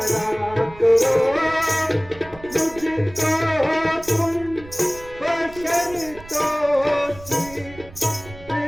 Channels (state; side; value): noise; right; rumble, 19 dB below the sound